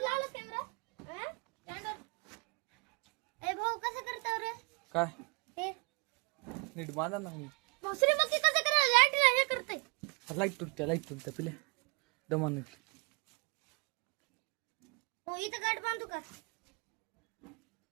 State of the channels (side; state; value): left; quieter; 30.6 dB